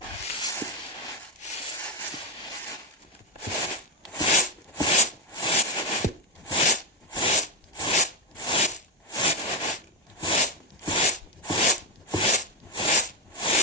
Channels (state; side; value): normal; both; correlation 0.07